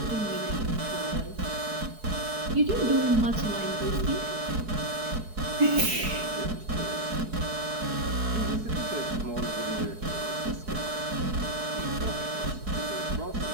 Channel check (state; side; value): late; left; 4.6 ms